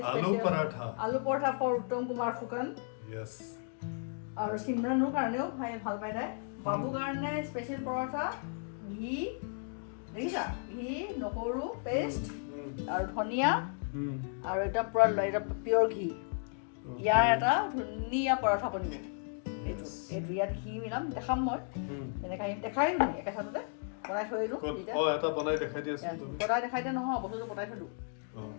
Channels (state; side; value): silent; right; 55 dB below the other